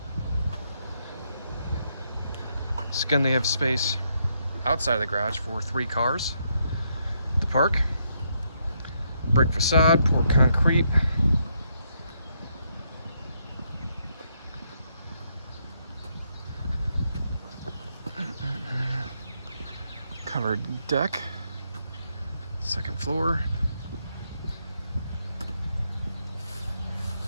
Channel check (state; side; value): inverted; both; correlation -0.77